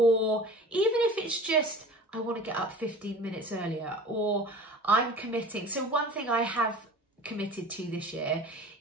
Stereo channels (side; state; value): both; normal; correlation 0.41